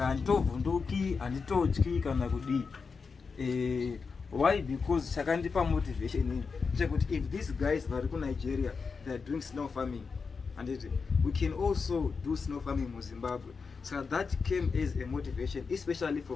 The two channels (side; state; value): right; quieter; 5.1 dB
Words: Vunduki and Itochi Kanagudi. Why? Because Sakandipa motivation. If these guys are in Nigeria, they are doing snow farming, and we can also do snow farming in Zimbabwe. So that came as a motivation, especially